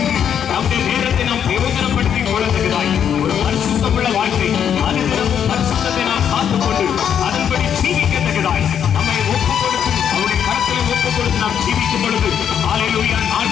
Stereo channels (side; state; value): right; quieter; 8.6 dB